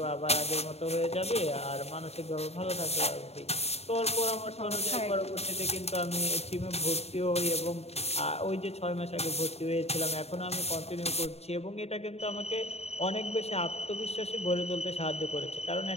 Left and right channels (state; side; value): late; right; 0.30 ms